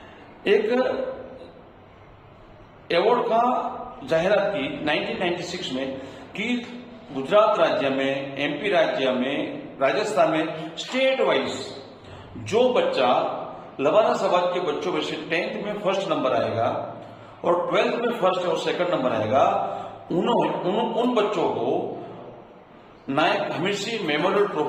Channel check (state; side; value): identical; both; correlation 1.00